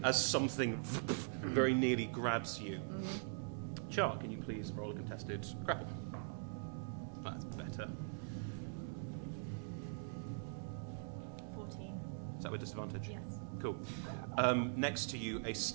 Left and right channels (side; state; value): left; silent; digital silence